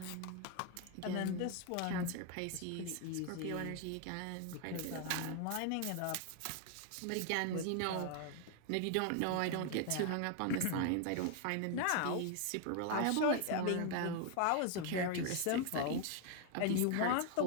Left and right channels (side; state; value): both; different; correlation 0.00